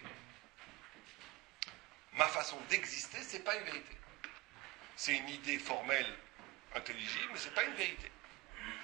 ma façon d'exister, ce n'est pas une vérité. C'est une idée formelle, intelligible, mais ce n'est pas une vérité.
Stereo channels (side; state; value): left; quieter; 21.5 dB